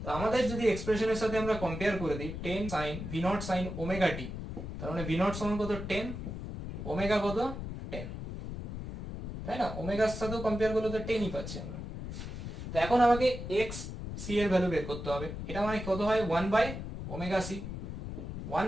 তো আমাদের যদি এক্সপ্রেশনের সাথে আমরা কম্পেয়ার করে দিই 10 sin v not sin omega t, তার মানে v নট সমান কত 10, ওমেগা কত 10, তাই না? ওমেগার সাথেও কম্পেয়ার করলে তো 10ই পাচ্ছি আমরা। তো এখন আমাকে x c এর ভ্যালু বের করতে হবে। এটা মানে কত হয় 1 by omega c, 1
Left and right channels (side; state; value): left; noise; rumble, 7 dB below the sound